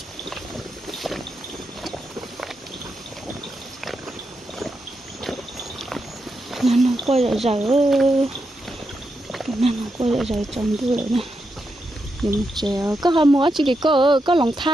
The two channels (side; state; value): both; normal; correlation 0.85